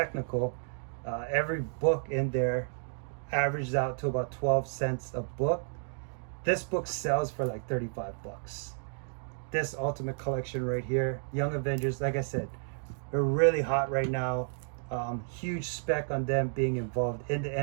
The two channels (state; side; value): silent; left; digital silence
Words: every book in there averages out to about 12 cents a book. This book sells for like $35. This Ultimate Collection right here, Young Avengers, like I said, they're really hot right now. Huge spec on them being involved in the